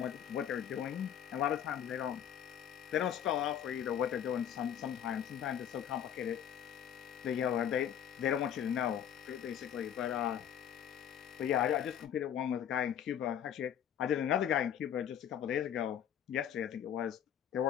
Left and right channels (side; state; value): right; quieter; 9.5 dB